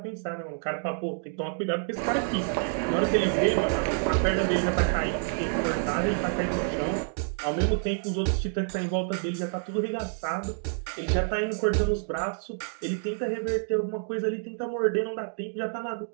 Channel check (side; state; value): left; silent; 59 dB below the other